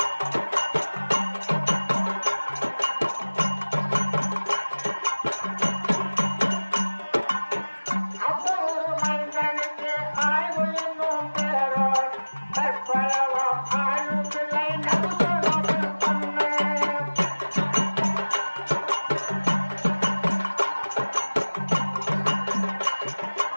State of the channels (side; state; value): both; inverted; correlation -1.00